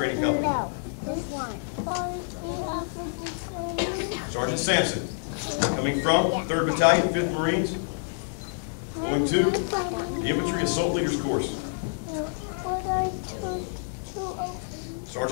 Company. Sergeant Sampson, coming from 3rd Battalion, 5th Marines, going to the Infantry Assault Leaders course.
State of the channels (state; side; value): silent; right; digital silence